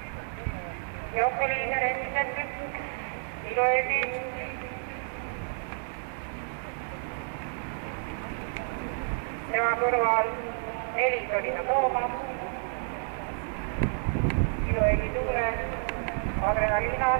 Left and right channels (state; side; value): silent; left; digital silence